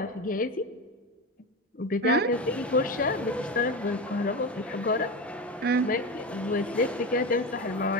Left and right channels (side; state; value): both; normal; correlation 0.21